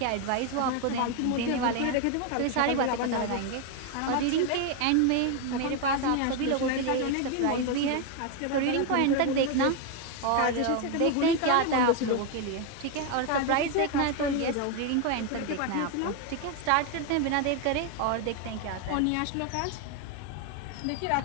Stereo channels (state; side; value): different; both; correlation 0.01